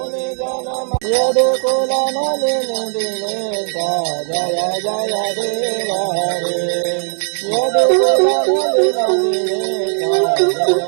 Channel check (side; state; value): left; silent; 66 dB below the other